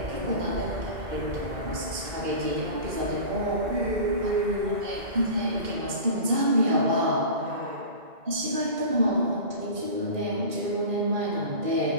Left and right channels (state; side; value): late; left; 2.4 ms